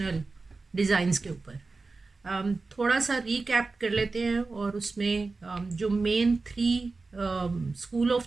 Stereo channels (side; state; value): left; quieter; 3.8 dB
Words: ڈیزائنز کے اوپر. تھوڑا سا ریکیپ کر لیتے ہیں اور اس میں جو مین 3 اسکول